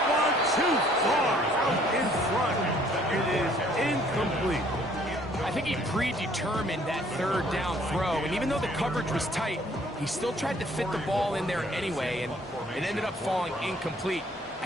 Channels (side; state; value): both; normal; correlation 0.60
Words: one too far out in front. It is incomplete. I think he predetermined that 3rd down throw, and even though the coverage was tight, he still tried to fit the ball in there anyway, and it ended up falling incomplete.